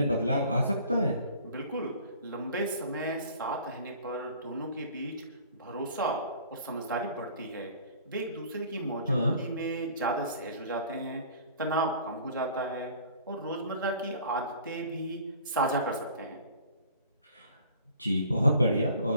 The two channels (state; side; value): inverted; both; correlation -0.49